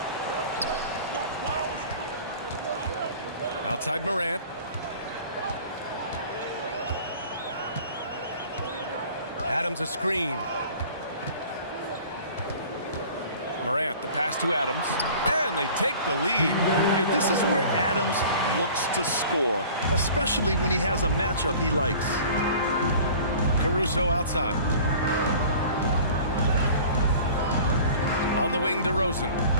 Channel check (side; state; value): both; inverted; correlation -0.45